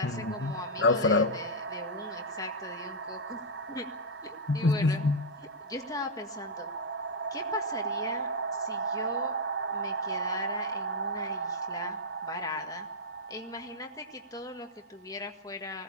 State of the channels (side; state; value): both; normal; correlation -0.04